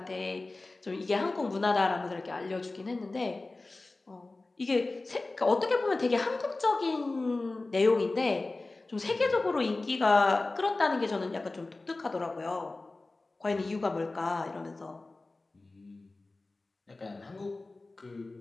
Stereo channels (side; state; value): right; quieter; 3.2 dB